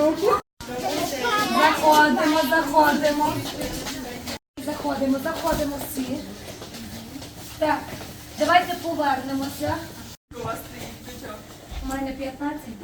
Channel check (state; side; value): identical; both; correlation 1.00